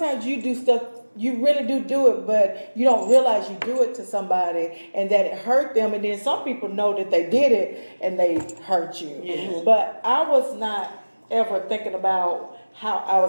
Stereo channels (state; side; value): inverted; both; correlation -1.00